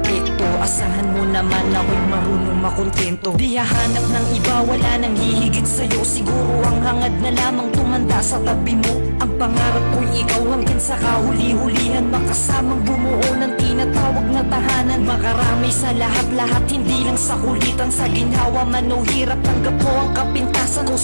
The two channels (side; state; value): both; inverted; correlation -1.00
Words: Asahan mo naman ako'y marunong makontento. Di hahanap ng iba, wala nang hihigit sa'yo. Siguro ang hangad na lamang tumanda sa tabi mo. Ang pangarap ko'y ikaw hanggang sa kahuli-hulihan, makasamang bumuo ng tinatawag na tahanan. Makarami sa lahat-lahat, hindi lang sa kulitan. Sa ginhawa man o hirap, tanggap ko ang kapintasan ko